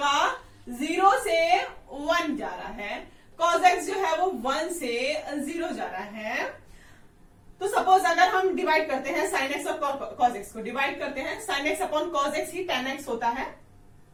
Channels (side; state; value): both; identical; correlation 1.00